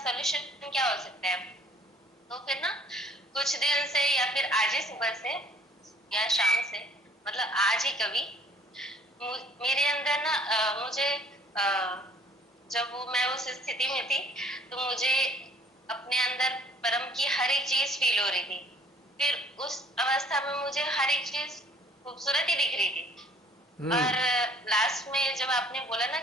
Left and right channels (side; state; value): both; normal; correlation 0.56